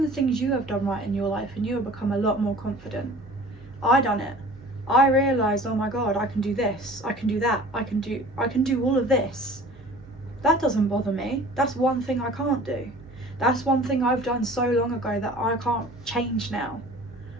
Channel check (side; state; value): right; noise; hum, 23 dB below the sound